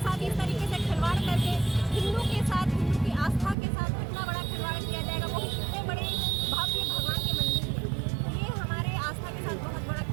साथ इस तरीके से खिलवाड़ करके हिंदू के साथ, हिंदू की आस्था के साथ इतना बड़ा खिलवाड़ किया जाएगा, वो भी इतने बड़े भव्य भगवान के मंदिर में। तो ये हमारे आस्था के साथ बहुत बड़ा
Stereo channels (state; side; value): drops out; left; at 3.6 s